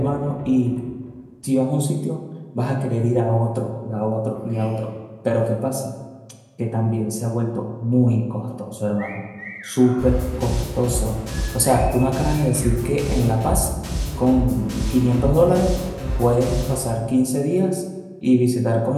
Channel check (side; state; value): both; identical; correlation 1.00